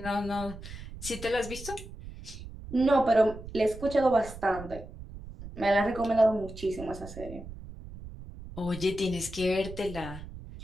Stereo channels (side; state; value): right; noise; rumble, 13 dB below the sound